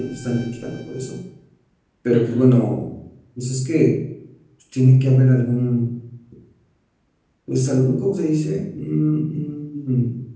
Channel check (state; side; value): identical; both; correlation 1.00